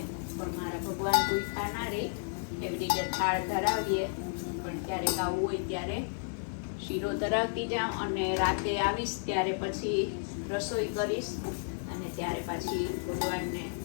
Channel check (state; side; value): silent; right; digital silence